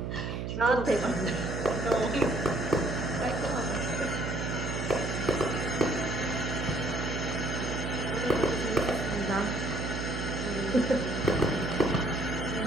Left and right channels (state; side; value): noise; right; hum, 3 dB below the sound